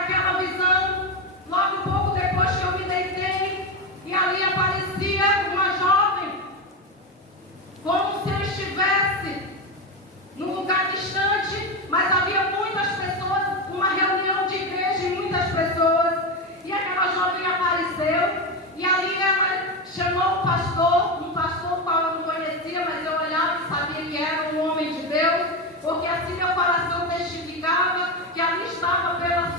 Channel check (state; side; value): normal; both; correlation 0.14